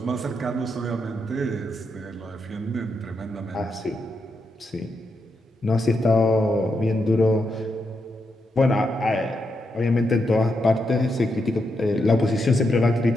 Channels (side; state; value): both; normal; correlation 0.83